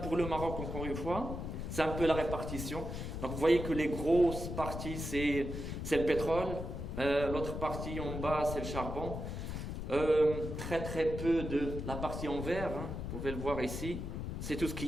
le Maroc, encore une fois. C'est un peu la répartition. Donc vous voyez que les grosses parties, c'est le pétrole. L'autre partie en bas, c'est le charbon. Très très peu de la partie en vert, hein, vous pouvez le voir ici. C'est tout ce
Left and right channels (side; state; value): left; noise; rumble, 5 dB below the sound